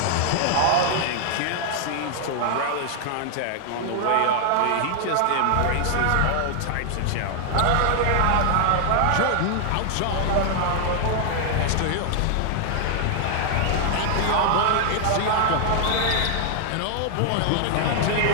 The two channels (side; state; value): both; different; correlation 0.00